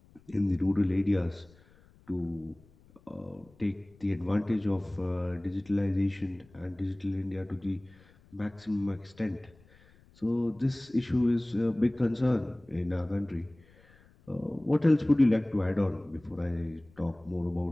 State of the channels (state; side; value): noise; left; rumble, 28 dB below the sound